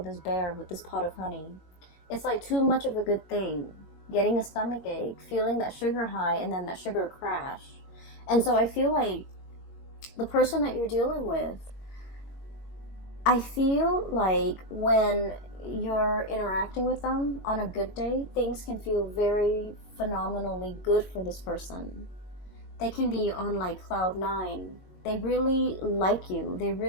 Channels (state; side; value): late; right; 22 ms